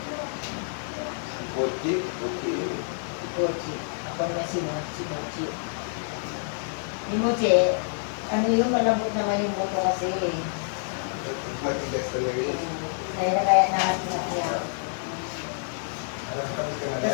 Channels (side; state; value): right; silent; digital silence